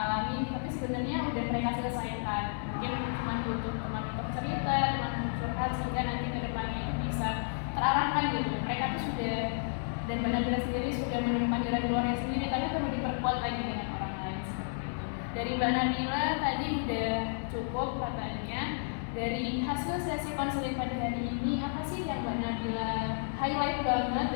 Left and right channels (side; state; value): right; silent; 56 dB below the other